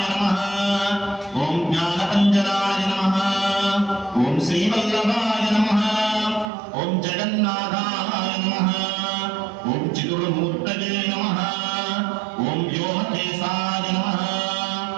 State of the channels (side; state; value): left; drops out; at 6.5 s